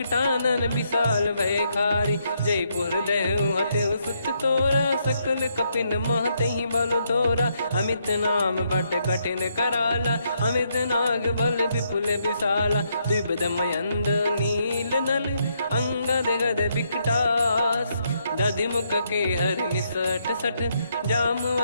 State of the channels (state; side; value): inverted; both; correlation -0.76